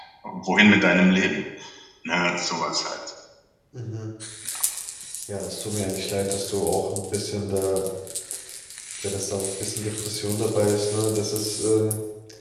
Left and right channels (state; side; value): identical; both; correlation 1.00